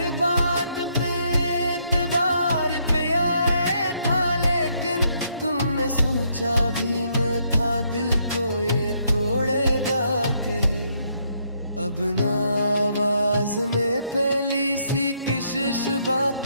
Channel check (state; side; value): inverted; both; correlation -0.73